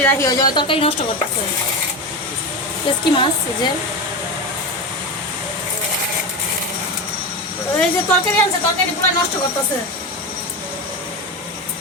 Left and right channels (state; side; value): normal; both; correlation 0.19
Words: রাখি হয়ে যাবে, তরকারি নষ্ট করতেছে। কি মাছ? এই যে তরকারি আনছে, তরকারি পুরো নষ্ট করতেছে।